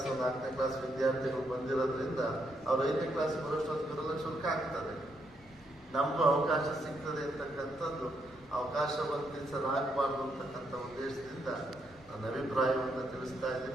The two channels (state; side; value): normal; both; correlation 0.77